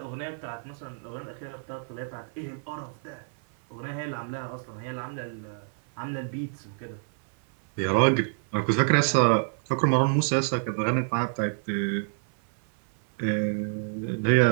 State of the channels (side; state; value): left; silent; 57 dB below the other